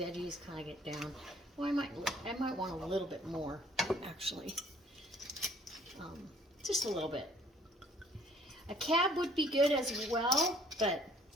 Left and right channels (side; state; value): both; normal; correlation 0.58